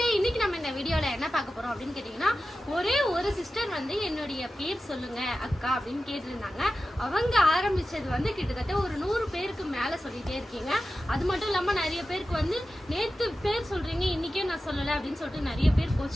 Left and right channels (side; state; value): both; normal; correlation 0.93